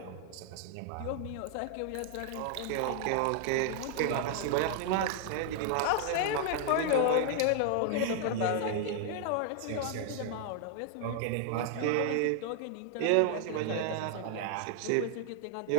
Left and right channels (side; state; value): both; different; correlation 0.00